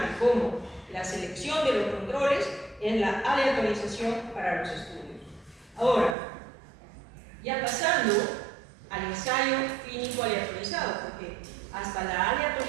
como la selección de los controles es la aleatorización para los estudios. Ahora, ya pasando al ensayo clínico aleatorizado, porque hasta la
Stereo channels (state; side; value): drops out; left; at 6.2 s